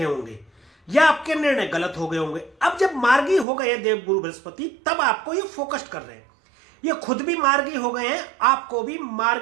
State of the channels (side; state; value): left; drops out; at 3.5 s